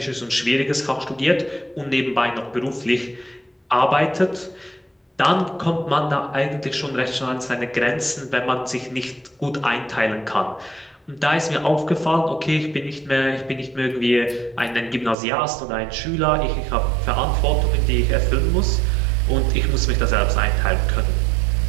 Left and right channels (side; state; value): left; drops out; at 15.2 s